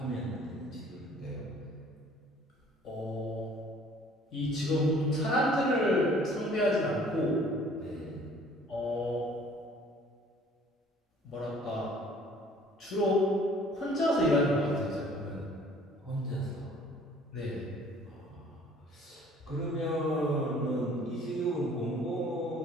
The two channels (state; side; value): normal; both; correlation 0.54